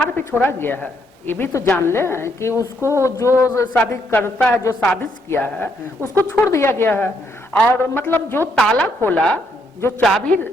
पे छोड़ा गया है ये भी तो जान ले कि उसको जो साजिश करता है, जो साजिश किया है, उसको छोड़ दिया गया है। और मतलब जो ताला खोला, जो चाबी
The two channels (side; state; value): both; normal; correlation 0.74